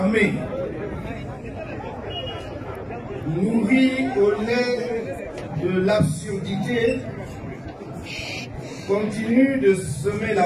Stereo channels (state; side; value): identical; both; correlation 1.00